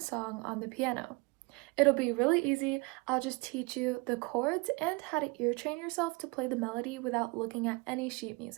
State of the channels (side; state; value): left; quieter; 27.0 dB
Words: on the piano. It'll be really easy. I'll just teach you the chords and how to ear train yourself to play the melody without looking at any sheet